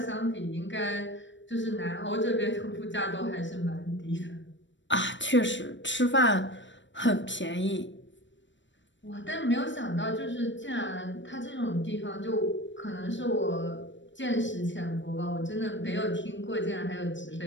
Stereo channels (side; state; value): right; late; 0.54 ms